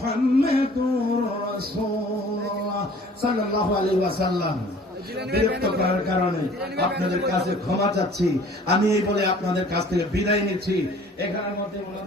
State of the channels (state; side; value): normal; both; correlation 0.51